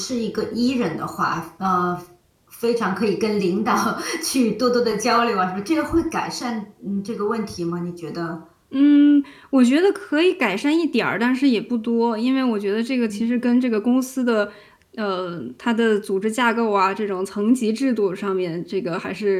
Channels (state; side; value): identical; both; correlation 1.00